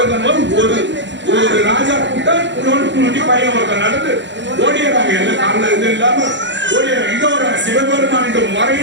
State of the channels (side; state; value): left; late; 0.53 ms